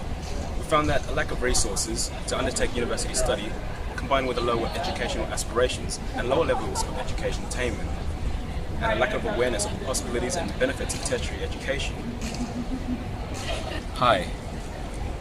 We found that a lack of resources to undertake university study, combined with a lower educational aspirations and lower levels of education attainment, and a lack of awareness of the possibilities and benefits of tertiary education. Hi,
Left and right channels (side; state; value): both; identical; correlation 1.00